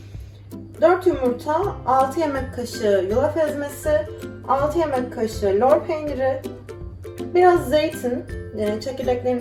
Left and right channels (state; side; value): identical; both; correlation 1.00